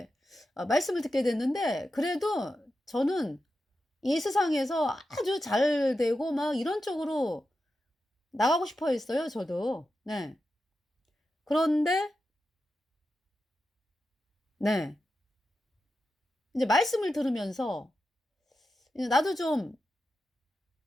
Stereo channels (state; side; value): normal; both; correlation 0.90